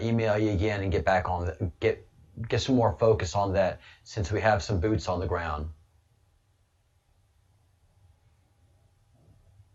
email you again and get back on get some more focus on that, since we have some boots on the ground.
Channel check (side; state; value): both; identical; correlation 1.00